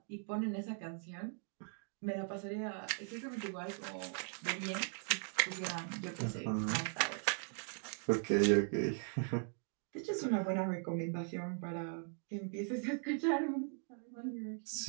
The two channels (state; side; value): silent; left; 51 dB below the other